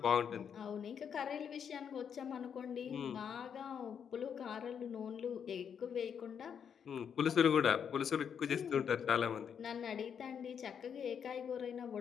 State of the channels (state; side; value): quieter; right; 7.6 dB